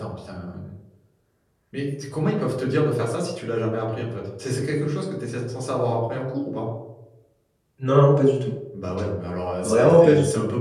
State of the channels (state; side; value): identical; both; correlation 1.00